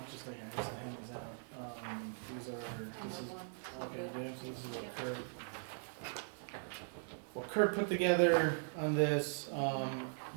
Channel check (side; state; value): left; silent; digital silence